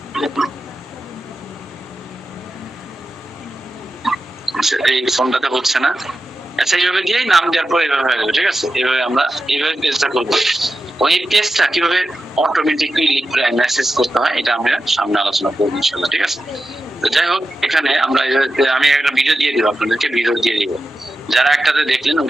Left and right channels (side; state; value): both; normal; correlation 0.91